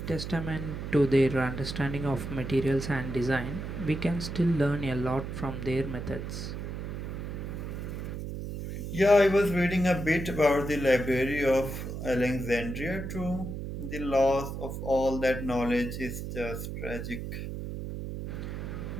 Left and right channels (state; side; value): noise; right; hum, 6 dB below the sound